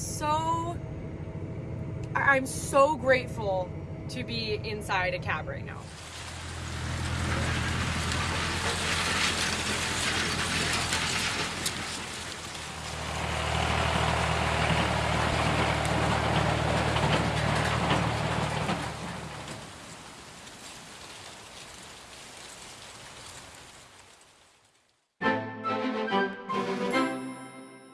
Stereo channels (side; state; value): both; identical; correlation 1.00